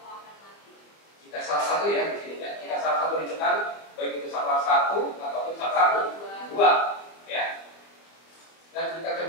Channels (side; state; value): right; late; 25 ms